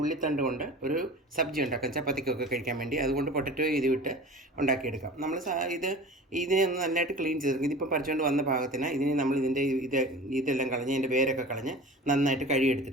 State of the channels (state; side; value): normal; both; correlation 0.38